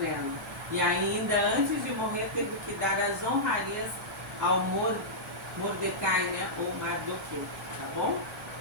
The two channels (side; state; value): both; normal; correlation -0.12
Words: E ainda antes de morrer teve que dar as honrarias ao Mordecai, né, ou Mardoqueu, tá bom?